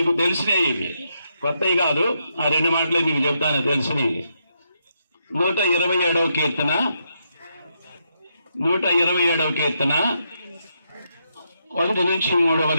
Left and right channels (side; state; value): both; inverted; correlation -0.80